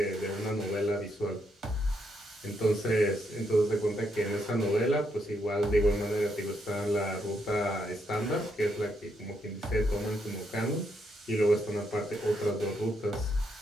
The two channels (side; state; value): both; normal; correlation 0.78